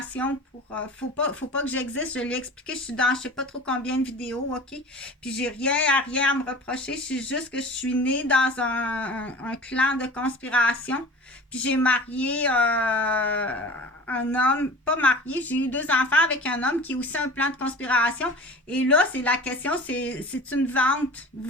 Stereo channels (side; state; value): both; normal; correlation 0.39